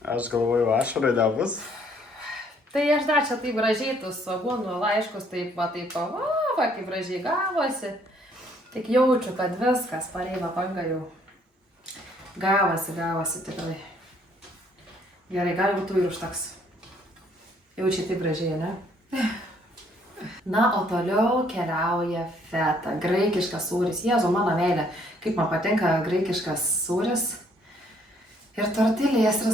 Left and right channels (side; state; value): both; normal; correlation 0.65